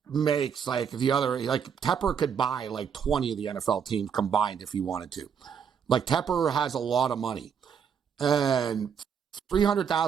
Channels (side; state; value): left; quieter; 7.4 dB